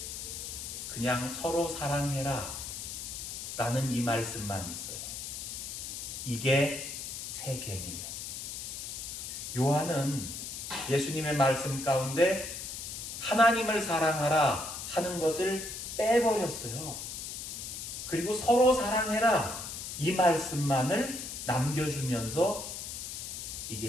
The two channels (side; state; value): left; noise; hiss, 7 dB below the sound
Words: 그냥 서로 사랑해라 라는 이 말씀만 있어요. 이게 새 계명이에요. 요한은 예수님의 말씀 가운데 하나님을 사랑하라 하는 것을 빼버렸어요. 그리고 서로 사랑해라 이 말씀만을 남겨주면서 이게